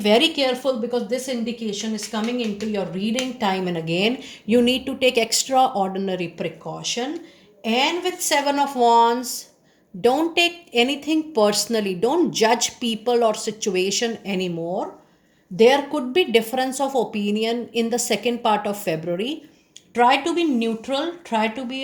careful, because this indication is coming into your reading time and again. You need to take extraordinary precaution. And with seven of wands, don't take anything personally, don't judge people or situation anymore. There could be difference of opinion in the second part of February. Try to be neutral, try to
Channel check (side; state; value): both; identical; correlation 1.00